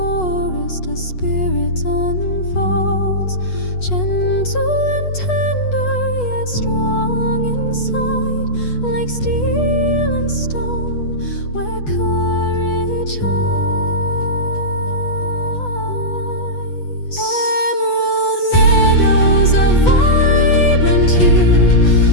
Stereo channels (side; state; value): right; late; 8.2 ms